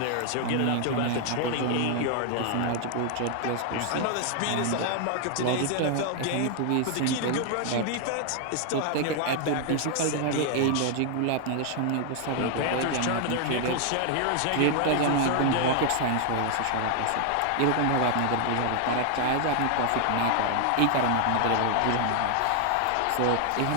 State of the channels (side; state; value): both; different; correlation 0.00